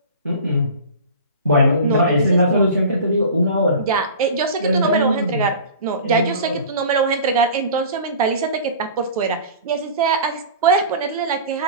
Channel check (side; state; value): both; inverted; correlation -0.38